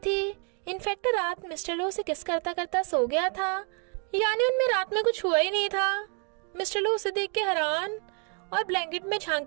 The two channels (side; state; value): left; quieter; 39.1 dB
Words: इनफैक्ट रात मिस्टर लो से किस करता करता सो गया था, यानी उनमें रात में कुछ हुआ ही नहीं था। मिस्टर लो उसे देख के हैरान और ब्लैंकेट में झांक